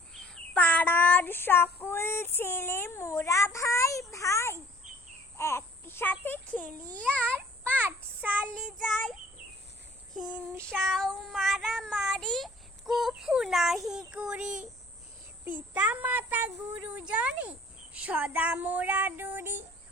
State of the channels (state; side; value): normal; both; correlation 0.54